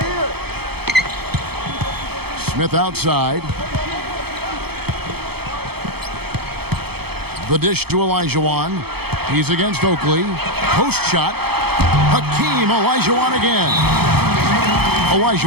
Smith outside. The dish to Olajuwon. He's against Oakley. Post shot. Hakeem Olajuwon again.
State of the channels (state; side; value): late; left; 0.96 ms